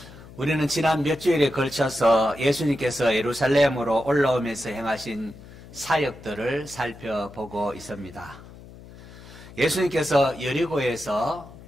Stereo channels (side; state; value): left; noise; hum, 18 dB below the sound